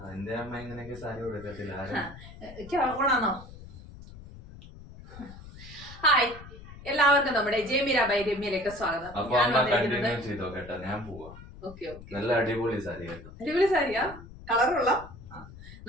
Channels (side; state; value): left; noise; rumble, 16 dB below the sound